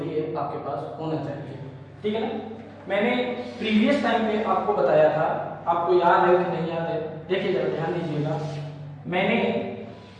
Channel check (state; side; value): identical; both; correlation 1.00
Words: है, आपके पास होना चाहिए, ठीक है ना। मैंने प्रीवियस टाइम पे आपको बताया था, आपको याद है कि नहीं याद है, देखिए जरा ध्यान दीजिएगा। मैंने